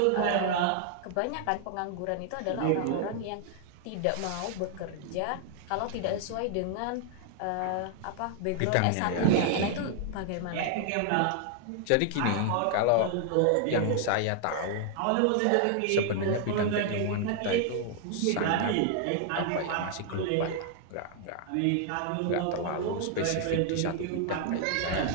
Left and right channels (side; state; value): both; different; correlation 0.00